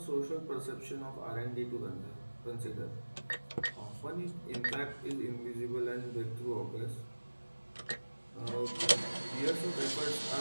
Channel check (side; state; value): both; inverted; correlation -1.00